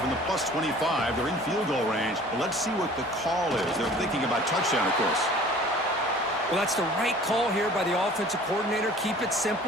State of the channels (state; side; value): normal; both; correlation 0.48